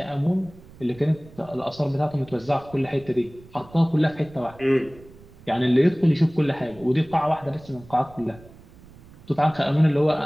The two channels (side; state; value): right; noise; rumble, 22 dB below the sound